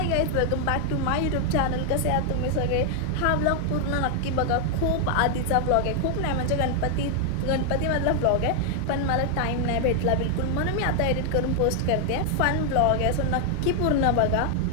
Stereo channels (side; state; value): both; different; correlation 0.00